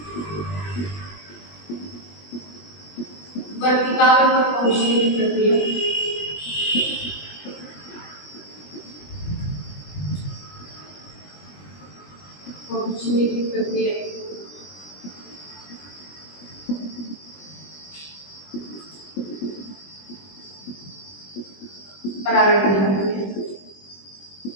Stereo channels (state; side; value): late; right; 20 ms